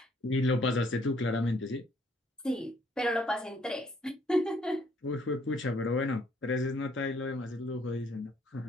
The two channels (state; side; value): normal; both; correlation 0.65